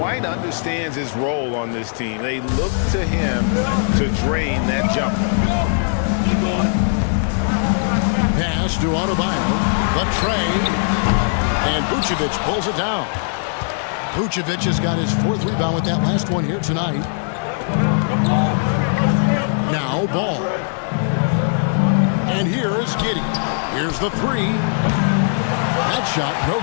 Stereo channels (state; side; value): silent; right; digital silence